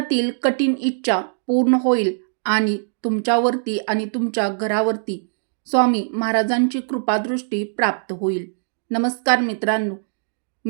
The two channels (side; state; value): left; silent; digital silence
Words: कठीण इच्छा पूर्ण होईल आणि तुमच्यावरती आणि तुमच्या घरावरती स्वामी महाराजांची कृपादृष्टी प्राप्त होईल. नमस्कार